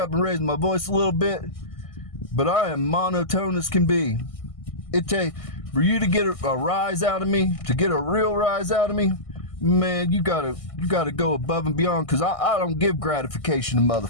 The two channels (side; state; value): right; late; 1.6 ms